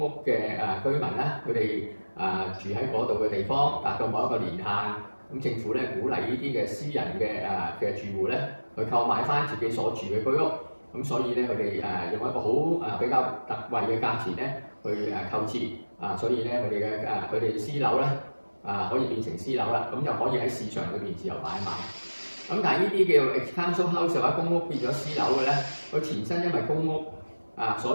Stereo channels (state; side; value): inverted; both; correlation -1.00